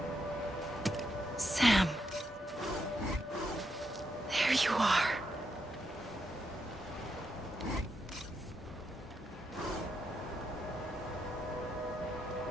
Sam. There you are.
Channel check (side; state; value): both; normal; correlation 0.81